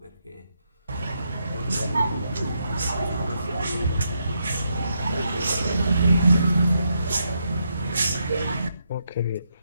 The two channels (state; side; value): inverted; both; correlation -0.80